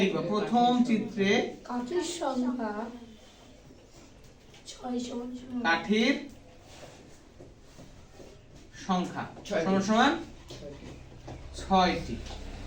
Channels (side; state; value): both; identical; correlation 1.00